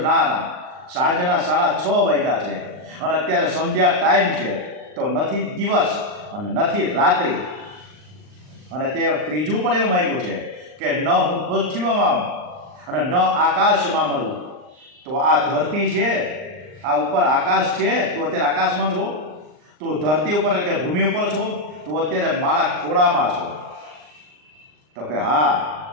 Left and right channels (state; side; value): late; left; 39 ms